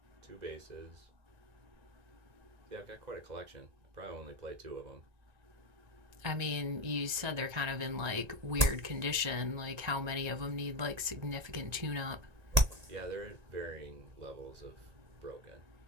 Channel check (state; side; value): late; left; 1.9 ms